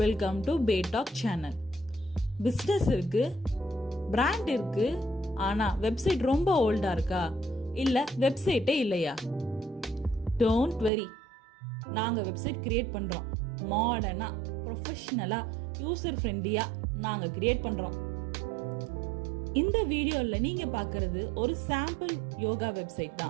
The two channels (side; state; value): left; drops out; at 10.9 s